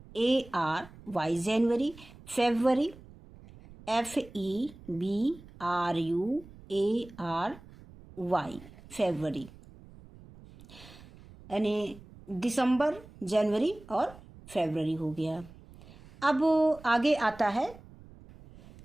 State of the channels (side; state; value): right; noise; rumble, 20 dB below the sound